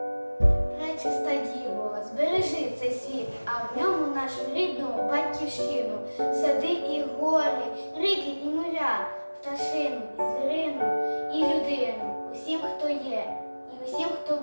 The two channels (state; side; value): inverted; both; correlation -1.00